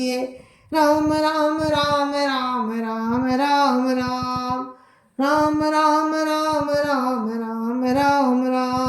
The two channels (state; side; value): identical; both; correlation 1.00